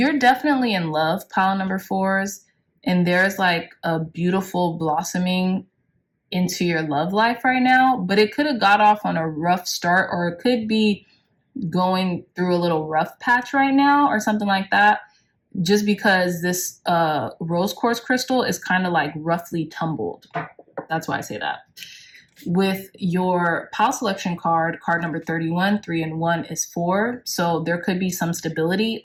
definitely in love, pile number 4s, and there's like a beautiful blossoming into your love life right now, but it could have got off on a rough start, or it could be going through a little rough patch right now or something like that, just because this rose quartz crystal is kind of like roughly tumbled. That's why I say that. With your pile selection card, card number 31, 3 and 1 is 4. So there could be some stability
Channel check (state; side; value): identical; both; correlation 1.00